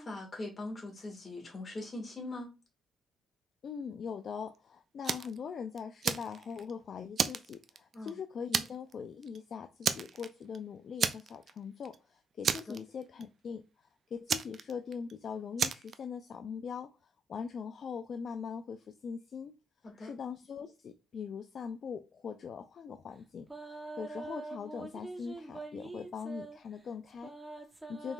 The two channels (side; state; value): both; normal; correlation 0.75